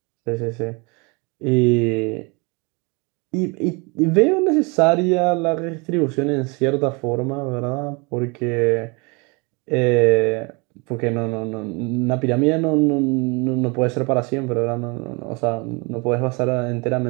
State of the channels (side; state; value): left; quieter; 29.7 dB